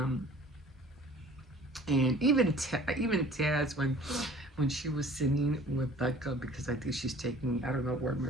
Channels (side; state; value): both; normal; correlation 0.49